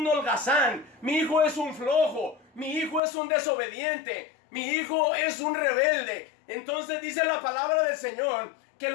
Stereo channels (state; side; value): drops out; right; at 3.0 s